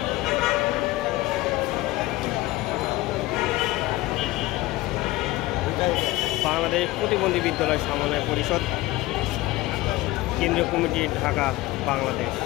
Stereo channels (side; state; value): right; quieter; 18.4 dB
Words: বাংলাদেশ প্রতিবন্ধী বিদ্যালয় সমন্বয় পরিষদ, কেন্দ্রীয় কমিটি, ঢাকা, বাংলাদেশ।